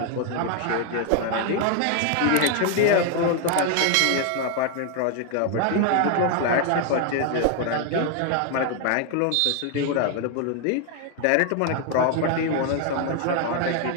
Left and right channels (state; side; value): different; both; correlation 0.00